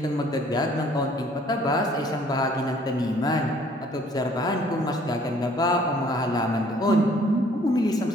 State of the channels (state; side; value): normal; both; correlation 0.58